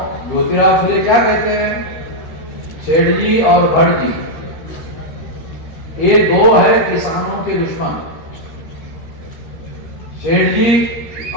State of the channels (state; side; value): late; right; 13 ms